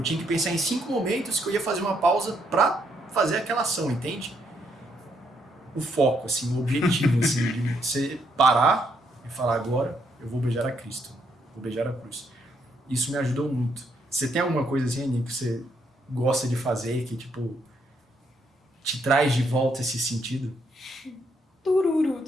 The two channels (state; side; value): normal; both; correlation 0.74